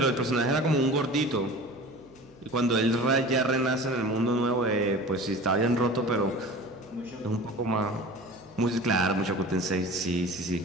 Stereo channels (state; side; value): noise; right; hum, 28 dB below the sound